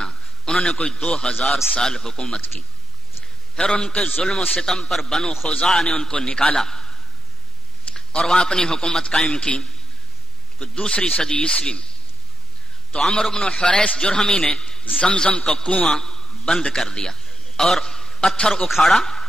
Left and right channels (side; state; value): both; normal; correlation 0.79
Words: انہوں نے کوئی 2000 سال حکومت کی. پھر ان کے ظلم و ستم پر بنو خزاعہ نے ان کو نکالا اور وہاں اپنی حکومت قائم کی. دوسری صدی عیسوی میں تو عمرو بن حریث جرہمی نے زمزم کا کنواں بند کر دیا اور پتھر اکھاڑا